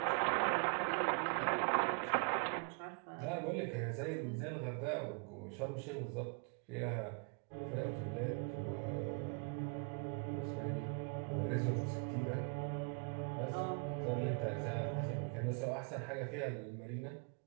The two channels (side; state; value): left; quieter; 37.4 dB